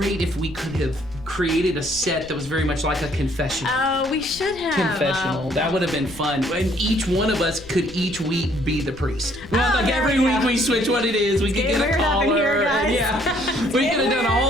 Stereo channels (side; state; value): left; noise; rumble, 19 dB below the sound